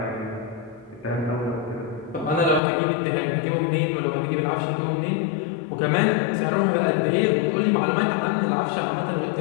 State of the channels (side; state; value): right; drops out; at 2.6 s